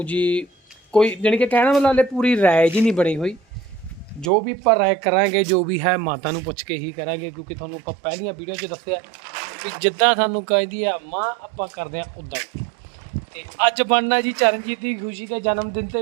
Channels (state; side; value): drops out; left; at 4.3 s